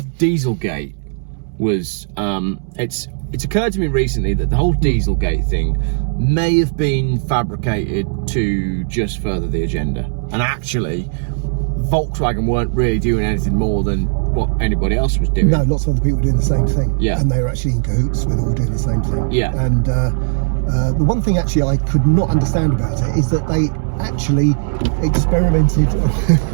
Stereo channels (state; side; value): silent; left; digital silence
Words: Dieselgate was it's occurred to me recently that the whole Dieselgate thing may have been fabricated to just further the agenda, and actually Volkswagen weren't really doing anything more than what anybody else was doing. No, lots of other people were doing the same thing. Yeah. And they were actually in cahoots with all doing the same thing. Yeah. And the one thing actually I could not understand about it is that they actually experimented.